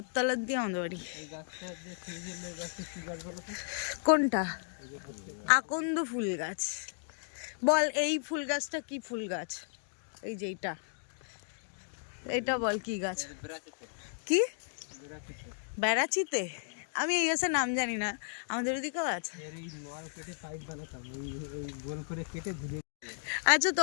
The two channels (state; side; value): silent; right; digital silence